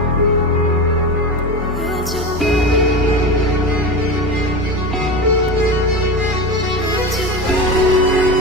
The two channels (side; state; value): both; normal; correlation 0.24